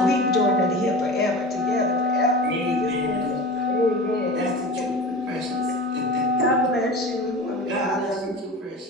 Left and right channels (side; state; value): both; normal; correlation 0.33